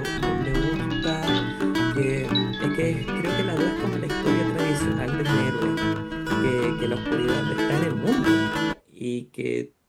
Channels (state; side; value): identical; both; correlation 1.00